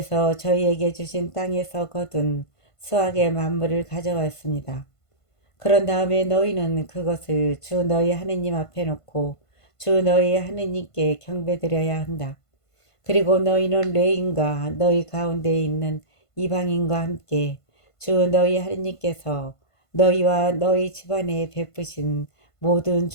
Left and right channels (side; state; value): right; late; 1.5 ms